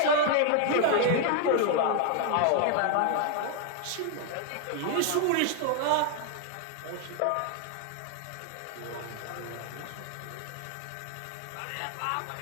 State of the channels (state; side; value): different; both; correlation 0.00